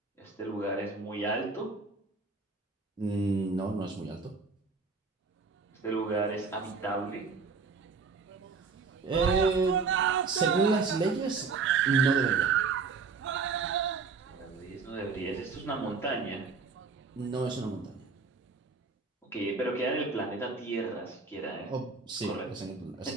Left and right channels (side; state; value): left; quieter; 4.7 dB